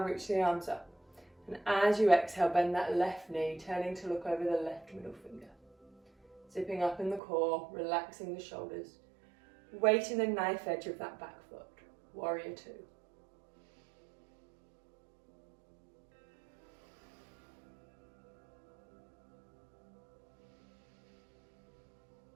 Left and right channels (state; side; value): drops out; left; at 7.2 s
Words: the arms up. And as you exhale, bend that left knee, turning to look over the left middle finger. Zipping up in the core, relaxing the shoulders. Weight in the knife edge of that back foot. Warrior two.